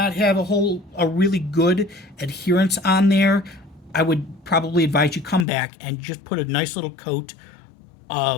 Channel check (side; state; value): right; drops out; at 5.5 s